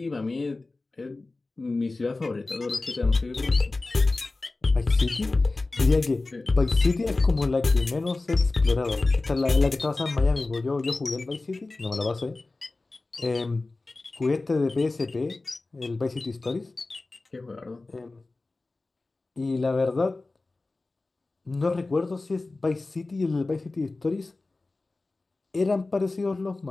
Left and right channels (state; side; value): quieter; right; 3.3 dB